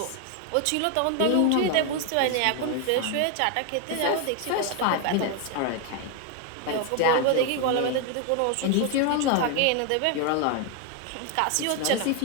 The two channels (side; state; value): both; different; correlation 0.01